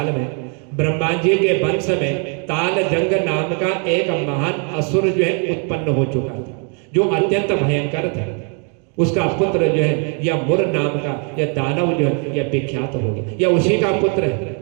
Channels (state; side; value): quieter; left; 39.8 dB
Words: में ब्रह्मा जी के वंश में ताल जंग नाम का एक महान असुर जो है उत्पन्न हो चुका था, जो अत्यंत भयंकर था। उसका पुत्र जो है यह मुर नाम का यह दानव जो है यह विख्यात हो गया। यह उसी का पुत्र है,